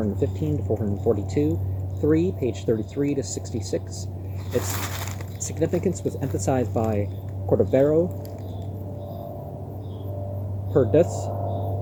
to 442, 3, page 33 to 66. Its significance was emphasized by Cordovero, Perdus,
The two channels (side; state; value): both; identical; correlation 1.00